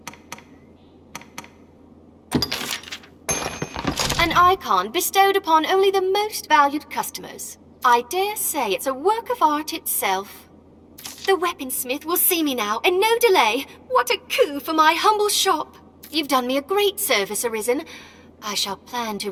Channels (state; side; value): identical; both; correlation 1.00